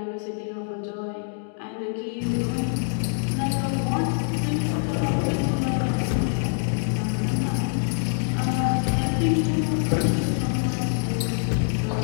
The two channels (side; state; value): right; silent; 62 dB below the other